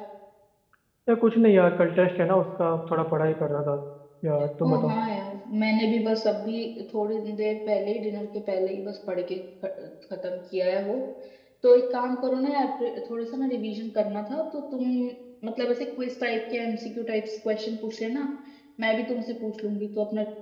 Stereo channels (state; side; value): identical; both; correlation 1.00